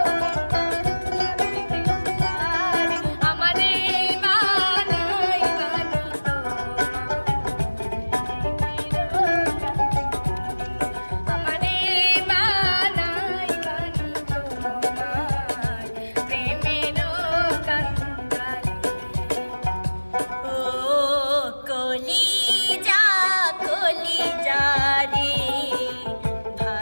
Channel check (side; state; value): both; inverted; correlation -1.00